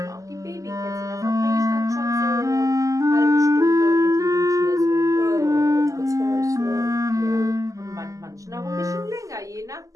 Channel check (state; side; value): late; left; 0.16 ms